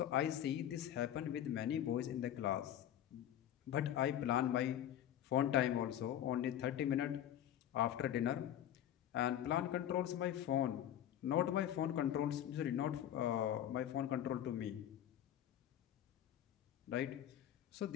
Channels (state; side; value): quieter; right; 11.0 dB